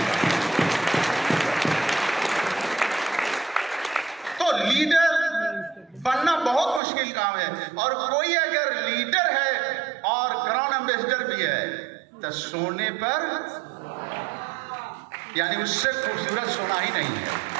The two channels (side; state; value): left; drops out; at 6.8 s